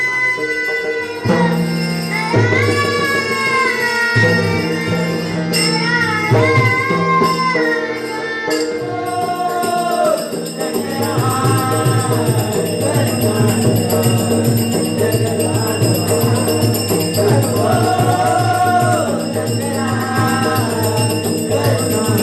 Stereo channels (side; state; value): both; identical; correlation 1.00